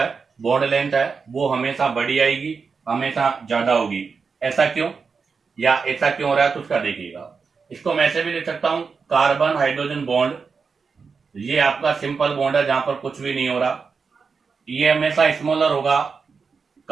बॉन्ड लेंथ है वो हमेशा बड़ी आएगी, हमेशा ज्यादा होगी। ऐसा क्यों या ऐसा क्यों हो रहा है तो उसका देखिएगा। इसको मैं ऐसे भी लिख सकता हूं, कार्बन हाइड्रोजन बॉन्ड, ये आपका सिंपल बॉन्ड है जहां पर कुछ भी नहीं हो रहा, ये हमेशा स्मॉलर होगा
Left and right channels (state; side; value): quieter; left; 5.2 dB